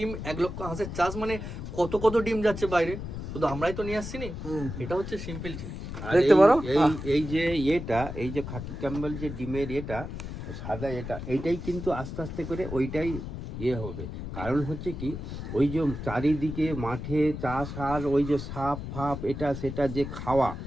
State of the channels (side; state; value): left; noise; rumble, 7 dB below the sound